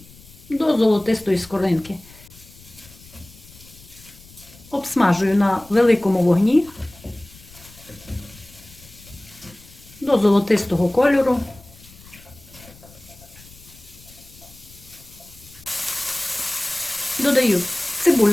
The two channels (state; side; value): noise; left; rumble, 22 dB below the sound